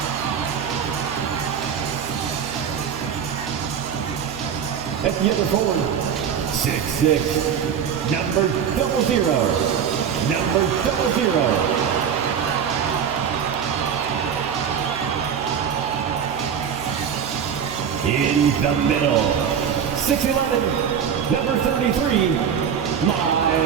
At the other forward, 6'6", number 00, number 00. In the middle, 6'11", number 33,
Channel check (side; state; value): left; quieter; 7.8 dB